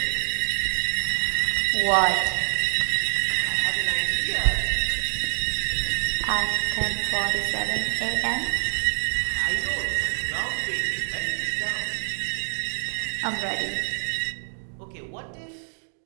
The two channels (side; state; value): left; silent; digital silence